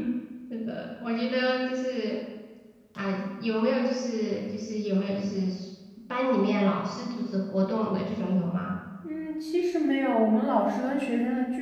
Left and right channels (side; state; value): both; identical; correlation 1.00